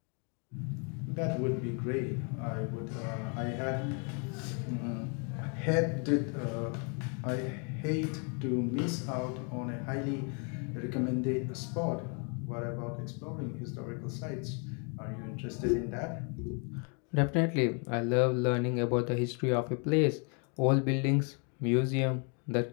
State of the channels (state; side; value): quieter; right; 37.8 dB